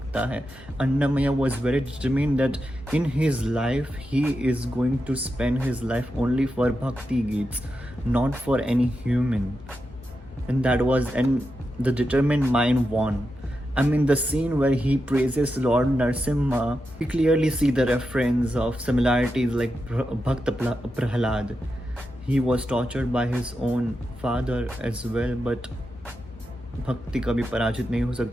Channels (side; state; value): both; normal; correlation 0.88